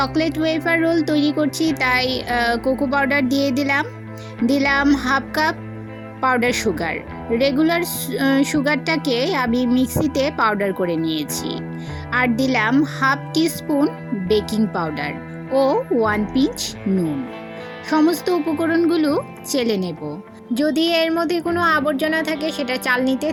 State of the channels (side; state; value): both; identical; correlation 1.00